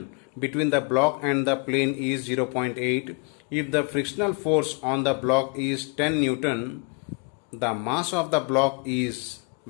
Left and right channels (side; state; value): right; quieter; 33.7 dB